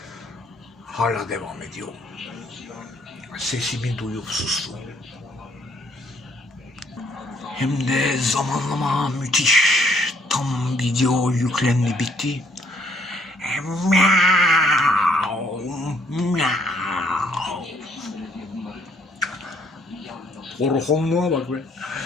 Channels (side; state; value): both; normal; correlation 0.66